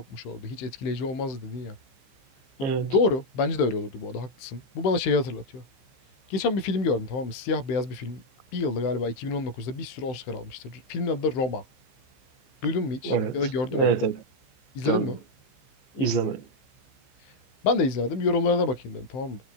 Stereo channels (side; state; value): right; late; 16 ms